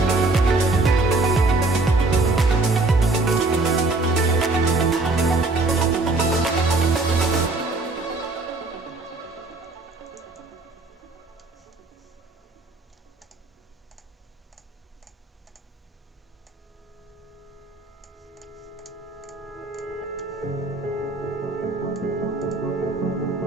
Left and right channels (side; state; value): left; quieter; 3.2 dB